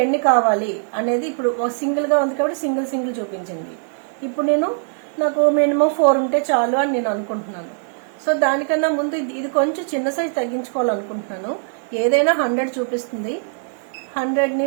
ఎన్ని కావాలి అనేది ఇప్పుడు సింగిల్ గా ఉంది కాబట్టి సింగిల్ చూపించింది. ఇప్పుడు నాకు మినిమం 4 ఉంటే చాలు అని నేను అనుకుంటున్నాను. సో దానికన్నా ముందు ఇది కొంచెం చిన్న సైజ్ తగ్గించుకోవాలనుకుంటున్నాను. ఏదైనా 100 చూపిస్తుంది, 100ని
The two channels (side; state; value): left; silent; digital silence